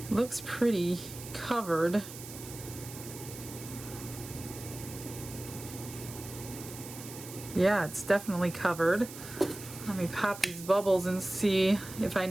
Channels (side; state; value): right; noise; hiss, 13 dB below the sound